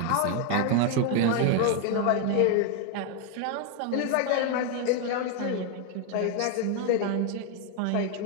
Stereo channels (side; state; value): both; different; correlation 0.01